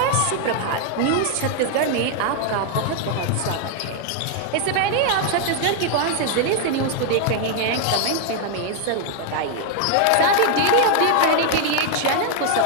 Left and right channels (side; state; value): both; different; correlation 0.00